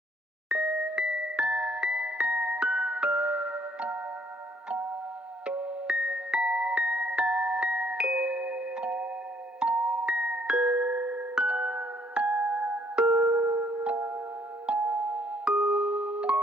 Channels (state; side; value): normal; both; correlation 0.65